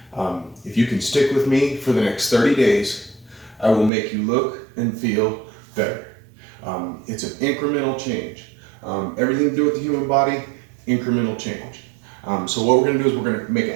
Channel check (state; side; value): drops out; left; at 3.9 s